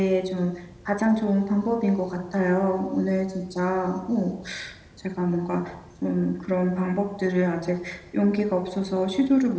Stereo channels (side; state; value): both; identical; correlation 1.00